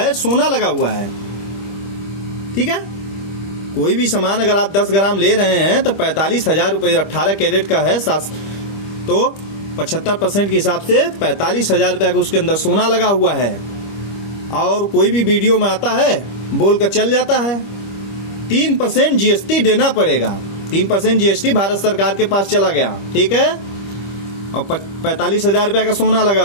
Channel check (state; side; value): late; right; 25 ms